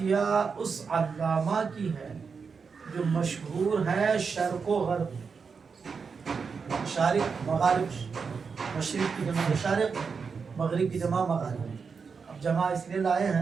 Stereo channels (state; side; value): quieter; left; 5.5 dB